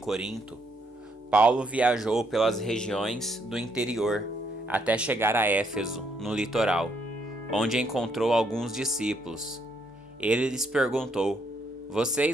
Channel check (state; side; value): normal; both; correlation 0.73